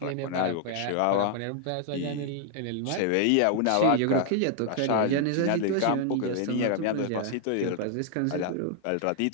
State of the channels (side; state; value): both; different; correlation 0.00